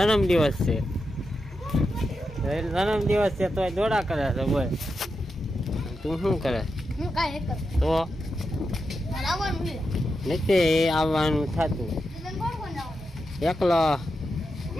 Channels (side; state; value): both; normal; correlation 0.87